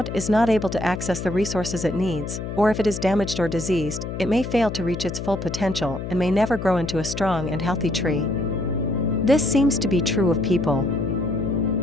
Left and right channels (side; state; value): left; noise; hum, 6 dB below the sound